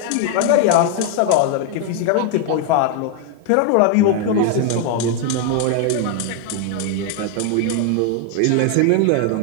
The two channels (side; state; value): both; different; correlation 0.01